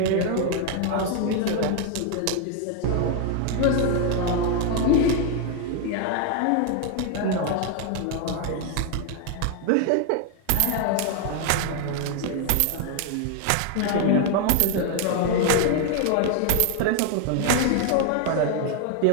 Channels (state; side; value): different; both; correlation 0.01